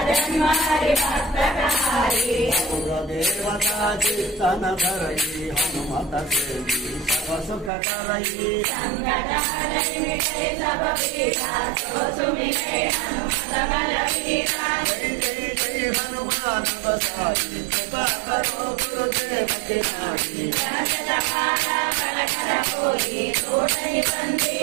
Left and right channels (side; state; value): left; drops out; at 7.7 s